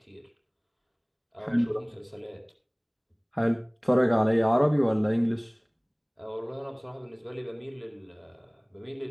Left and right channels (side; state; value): both; identical; correlation 1.00